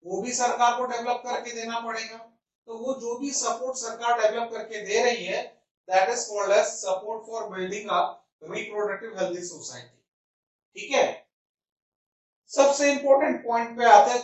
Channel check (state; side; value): identical; both; correlation 1.00